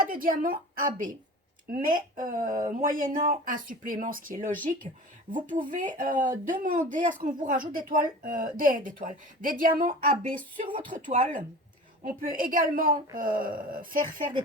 de diamant AB. Mais moyennant un supplément, ce qui est logique, vous pouvez demander à ce qu'on vous rajoute des diamants AB sur votre toile. On peut également faire des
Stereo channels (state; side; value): normal; both; correlation 0.37